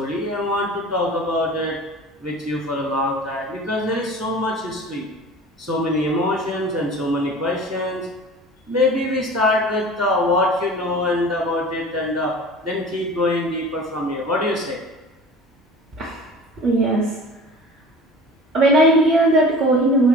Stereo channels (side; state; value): both; normal; correlation 0.40